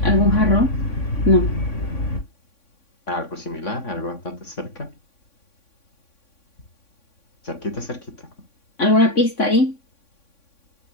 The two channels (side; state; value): right; late; 3.6 ms